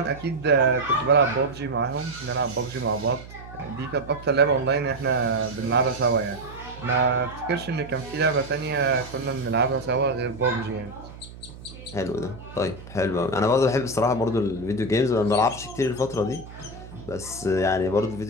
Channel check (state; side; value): noise; right; hum, 16 dB below the sound